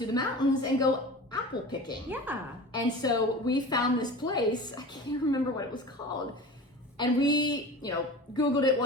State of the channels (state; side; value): normal; both; correlation 0.35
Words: the mountains and go apple picking. Yeah. And so we found this place, I can't remember what it was called. And we, Googled it,